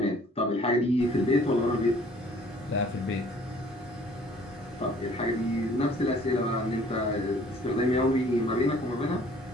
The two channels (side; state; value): both; normal; correlation 0.55